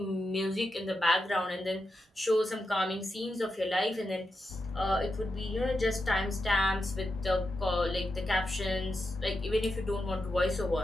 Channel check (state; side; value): normal; both; correlation 0.87